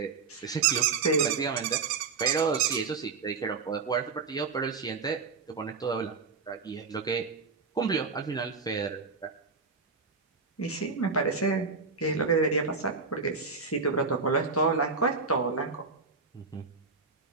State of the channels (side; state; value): left; quieter; 4.7 dB